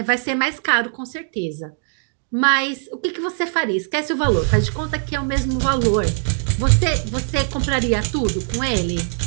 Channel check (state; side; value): silent; left; digital silence